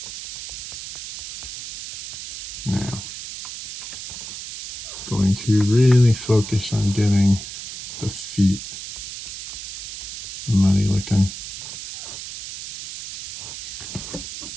Now, going to really focus on getting the feet muddy looking.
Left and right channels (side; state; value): right; noise; hiss, 9 dB below the sound